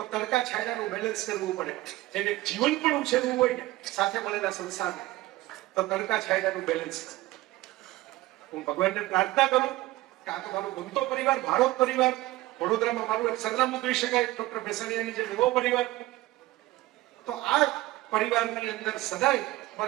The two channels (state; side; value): quieter; left; 18.1 dB